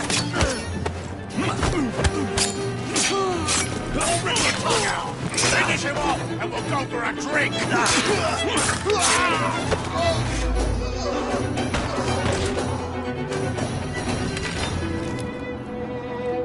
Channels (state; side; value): identical; both; correlation 1.00